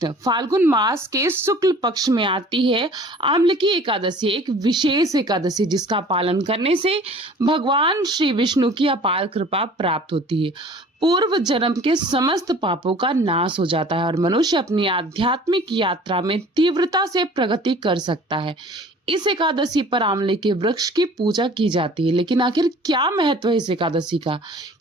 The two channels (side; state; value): both; normal; correlation 0.48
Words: फाल्गुन मास के शुक्ल पक्ष में आती है आम्ल की एकादशी, एक विशेष एकादशी जिसका पालन करने से भगवान श्री विष्णु की अपार कृपा प्राप्त होती है। पूर्व जन्म के समस्त पापों का नाश हो जाता है और मनुष्य अपनी आध्यात्मिक यात्रा में तीव्रता से प्रगति कर सकता है। इस एकादशी पर आंवले के वृक्ष की पूजा की जाती है। लेकिन आखिर क्या महत्व है इस एकादशी का?